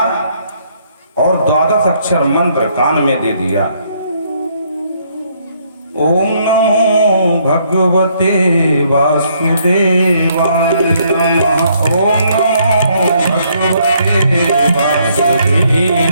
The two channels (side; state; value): both; inverted; correlation -0.69